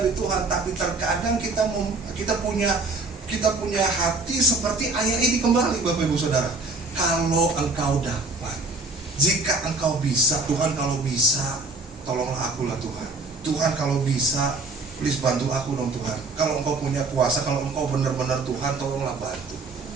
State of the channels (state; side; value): quieter; left; 3.3 dB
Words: Tuhan, tapi terkadang kita punya hati seperti ayah ini kembali, Bapak Ibu Saudara. Kalau engkau dapat, jika engkau bisa, Tuhan kalau bisa, tolonglah akulah Tuhan. Tuhan kalau bisa, please bantu aku dong Tuhan. Kalau engkau punya kuasa, kalau engkau benar-benar Tuhan, tolonglah bantu.